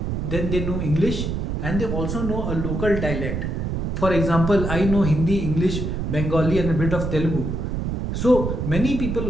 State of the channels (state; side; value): noise; right; rumble, 2 dB below the sound